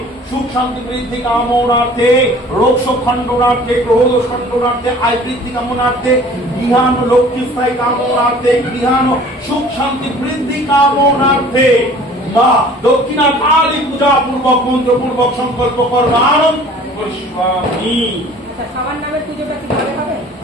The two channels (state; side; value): normal; both; correlation 0.49